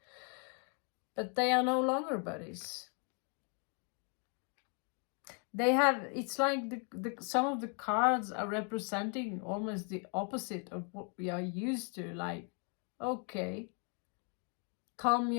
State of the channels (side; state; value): right; quieter; 39.6 dB